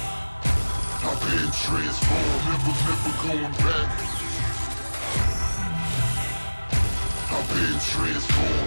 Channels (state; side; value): inverted; both; correlation -1.00